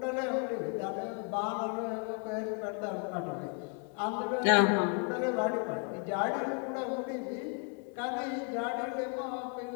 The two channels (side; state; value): right; quieter; 37.4 dB